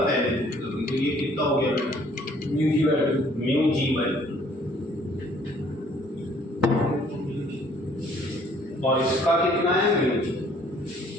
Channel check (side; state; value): both; normal; correlation 0.59